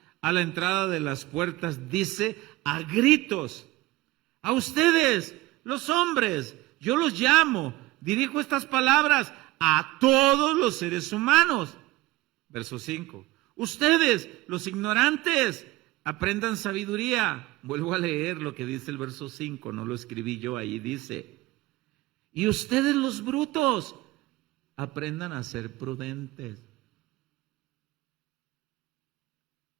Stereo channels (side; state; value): left; quieter; 18.8 dB